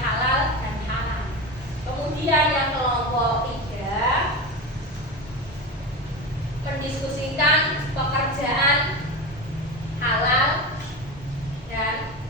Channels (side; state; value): both; normal; correlation 0.23